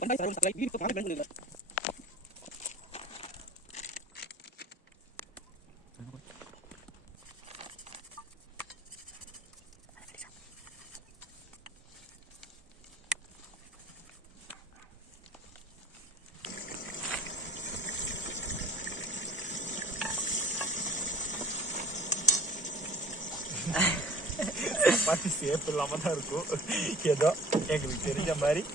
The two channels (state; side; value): normal; both; correlation 0.47